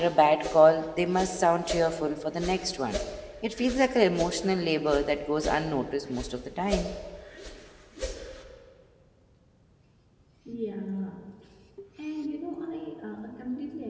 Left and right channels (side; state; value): both; identical; correlation 1.00